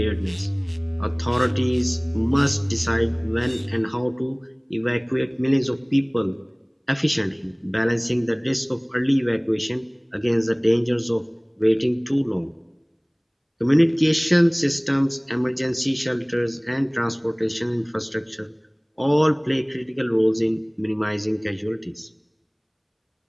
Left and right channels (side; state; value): both; identical; correlation 1.00